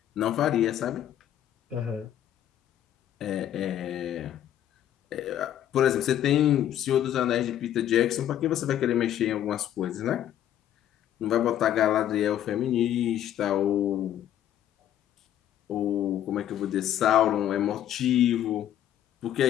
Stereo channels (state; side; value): quieter; right; 11.2 dB